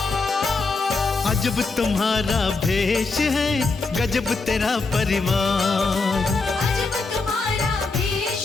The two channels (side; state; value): right; quieter; 3.9 dB